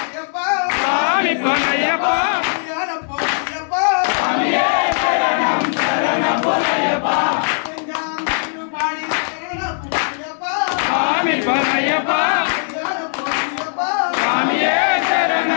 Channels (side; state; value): right; silent; digital silence